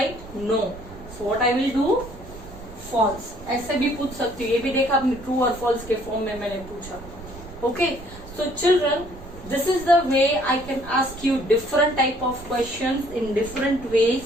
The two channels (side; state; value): right; noise; rumble, 16 dB below the sound